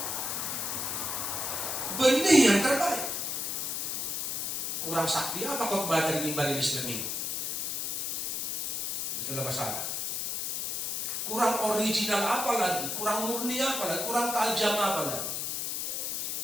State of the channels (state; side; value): noise; left; hiss, 1 dB below the sound